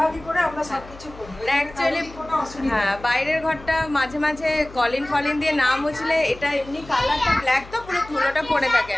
করে আমরা সবকিছু করি। অ্যাকচুয়ালি হ্যাঁ, বাইরের ঘরটা মাঝে মাঝে কলিন ফলিন দিয়ে না মুছলে এটা এমনি কালারটা ব্ল্যাক তো পুরো ধুলোটা পড়ে থাকে।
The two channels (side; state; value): left; noise; hum, 18 dB below the sound